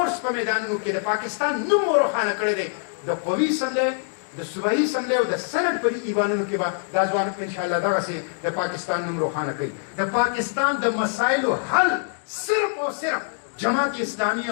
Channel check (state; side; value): silent; right; digital silence